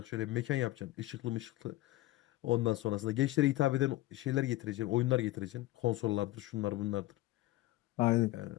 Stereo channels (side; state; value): right; quieter; 17.1 dB